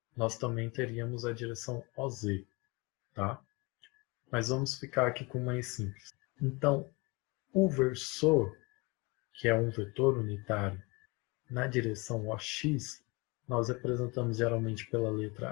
nós também teríamos a direção OZ, tá? Mas vamos ficar aqui com o mais simples. Então, o versor que é um vetor unitário, na direção OX, nós representamos geralmente pela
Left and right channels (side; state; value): right; quieter; 25.8 dB